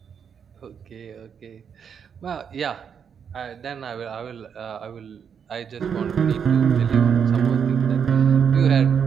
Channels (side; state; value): left; quieter; 7.3 dB